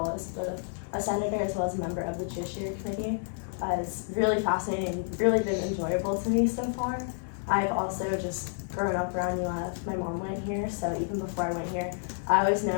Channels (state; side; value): silent; right; 58 dB below the other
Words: as both a senator as well as a member of the Judiciary Committee is really fascinating, really been enjoyable to me so far. I've also just grown up around UF. My mom went here, so even before I went here, I always knew